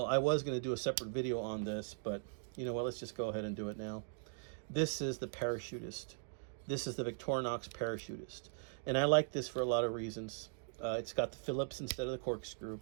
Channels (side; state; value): left; silent; digital silence